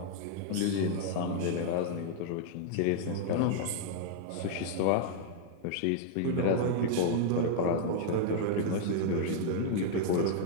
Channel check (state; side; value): different; both; correlation -0.01